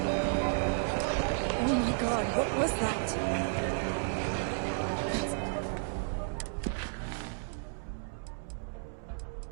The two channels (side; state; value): left; silent; digital silence